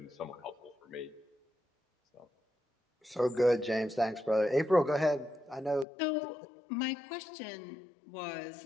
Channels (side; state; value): right; drops out; at 5.9 s